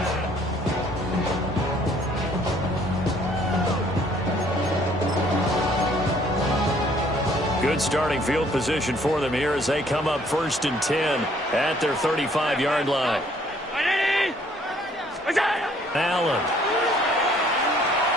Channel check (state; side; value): normal; both; correlation 0.61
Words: Good starting field position for them here as they come up 1st and 10 at their 35-yard line. Allen.